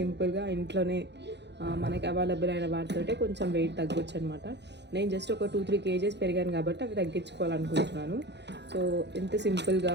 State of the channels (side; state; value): left; late; 0.50 ms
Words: ఇంట్లోనే మనకి అవైలబుల్ అయిన వాటితోటే కొంచెం వెయిట్ తగ్గొచ్చు అనమాట. నేను జస్ట్ ఒక 2-3 kgs పెరిగాను కాబట్టి అవి తగ్గించుకోవాలనుకుంటున్నాను. సో ఎంత సింపుల్గా